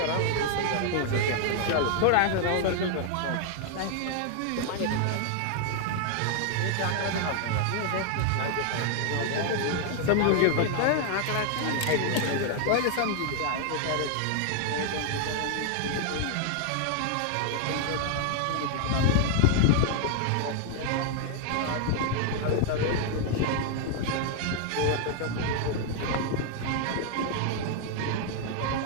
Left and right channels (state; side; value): different; both; correlation 0.00